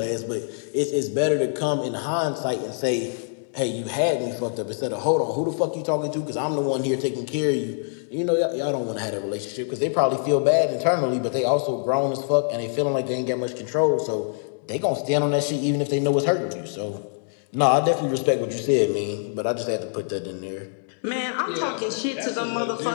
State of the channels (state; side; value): silent; right; digital silence